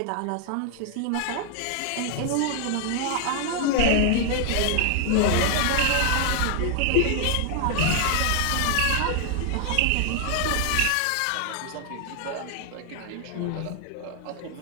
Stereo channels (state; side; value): different; both; correlation 0.00